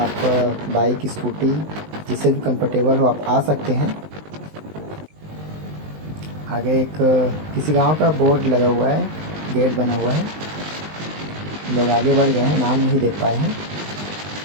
बाइक स्कूटी जिससे भी कंफर्टेबल हो आप आ सकते हैं। आगे एक किसी गांव का बोर्ड लगा हुआ है, गेट बना हुआ है। लोग आगे बढ़ गए हैं, नाम नहीं देख पाए हैं।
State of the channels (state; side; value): late; left; 20 ms